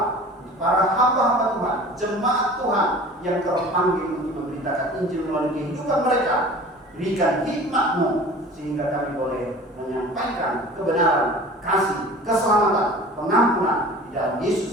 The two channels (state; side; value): normal; both; correlation 0.42